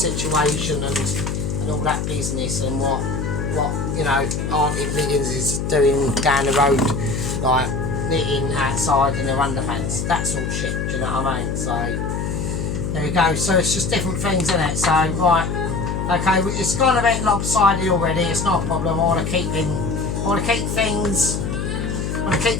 and all that business and what you know, Auntie Riggins is doing down the road, like knitting outside in her underpants, that sort of shit, do you know what I mean? So there we go. So it's just different things, isn't it? So right, okay, it's gone a bit lopsided already. It's not a problem. I want to keep things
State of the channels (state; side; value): noise; left; hum, 2 dB below the sound